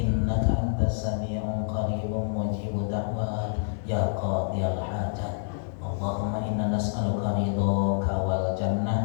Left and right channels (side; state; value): right; silent; 60 dB below the other